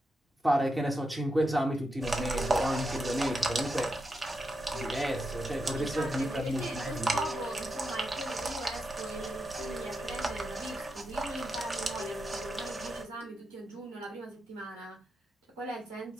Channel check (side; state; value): both; normal; correlation 0.86